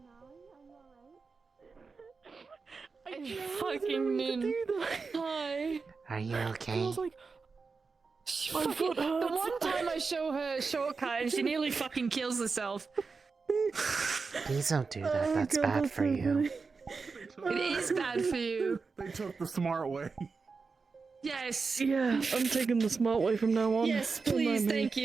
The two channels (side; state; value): left; quieter; 4.6 dB